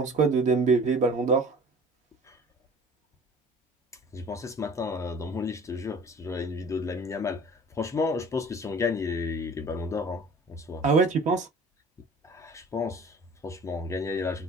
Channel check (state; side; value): normal; both; correlation 0.46